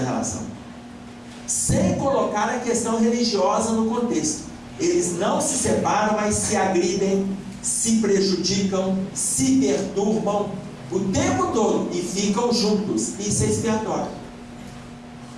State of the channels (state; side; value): identical; both; correlation 1.00